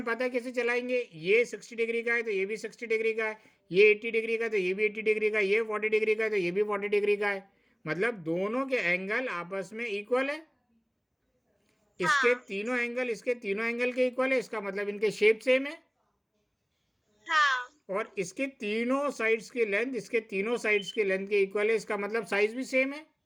पता कैसे चलाएंगे? ये 60 डिग्री का है तो ये भी 60 डिग्री का है, ये 80 डिग्री का है तो ये भी 80 डिग्री का है, ये 40 डिग्री का है तो ये भी 40 डिग्री का है, मतलब दोनों के एंगल आपस में इक्वल है। इसके हाँ तीनों एंगल इसके तीनों एंगल के इक्वल है, इसका मतलब इनके शेप सेम है। हाँ और इसके तीनों साइड्स की लेंथ इसके तीनों साइड्स की लेंथ के इक्वल है, इसका मतलब साइज भी सेम है,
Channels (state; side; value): identical; both; correlation 1.00